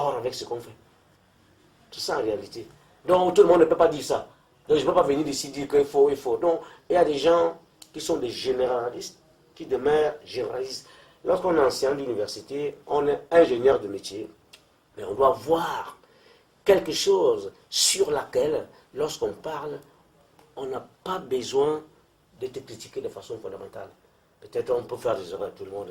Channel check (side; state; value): both; identical; correlation 1.00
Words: avec ce qu'on fait. C'est ça en réalité. Donc tout le monde ne peut pas dire ça. Donc je ne peux pas venir ici dire qu'il faut, il faut. Donc il y a des gens qui sont des généralistes, qui demeurent généralistes. Lorsqu'on est enseignant d'université, on est ingénieur de métier, mais on doit voir quelque chose sur laquelle, lorsqu'on parle, on n'a pas besoin d'être critiqué de façon fondamentale. Peut-être on peut faire des erreurs, tout le monde.